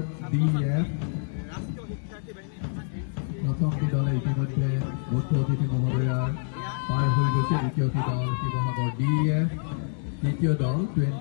DEF প্ৰথমটি দলে ইতিমধ্যে মুখ্য অতিথি মহোদয়াৰ পাৰ হৈ গৈছে। দ্বিতীয়টি দল শিৱসাগৰ DEF, তৃতীয় দল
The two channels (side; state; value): right; silent; digital silence